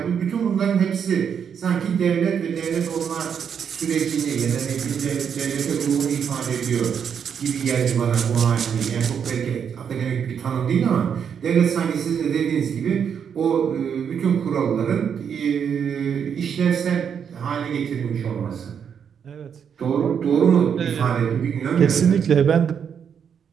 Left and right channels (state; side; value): quieter; left; 7.5 dB